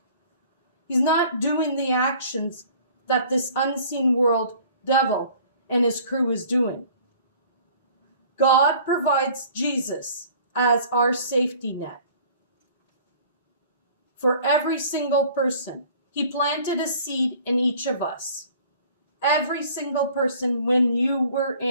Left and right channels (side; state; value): both; inverted; correlation -0.50